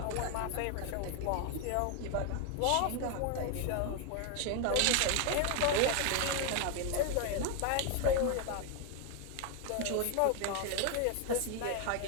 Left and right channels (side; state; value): both; different; correlation 0.01